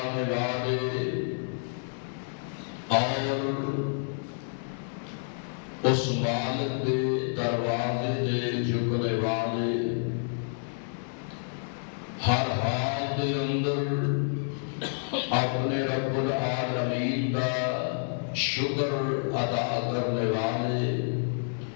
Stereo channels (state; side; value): silent; right; digital silence